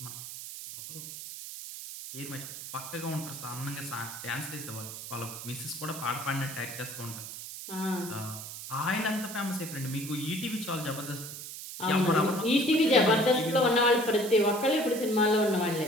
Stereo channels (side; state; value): right; noise; hiss, 10 dB below the sound